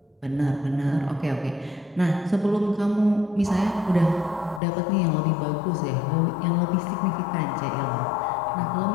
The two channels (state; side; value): drops out; right; at 4.6 s